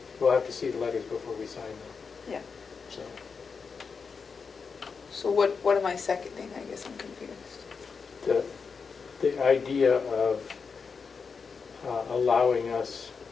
we'll have to see the letters before we sign them. Yeah. So, So what am I seconding? I guess I'm confused. the idea of allowing us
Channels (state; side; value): quieter; right; 5.4 dB